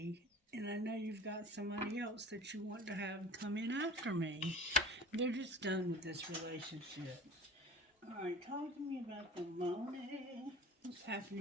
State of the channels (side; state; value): both; normal; correlation 0.41